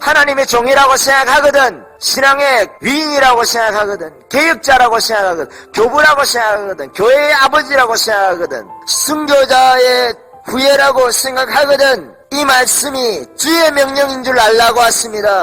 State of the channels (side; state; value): both; identical; correlation 1.00